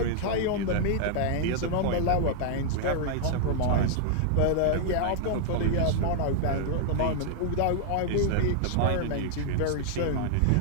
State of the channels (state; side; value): different; both; correlation -0.01